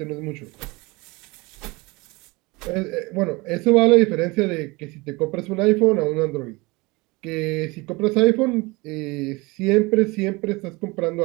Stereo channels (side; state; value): left; quieter; 24.5 dB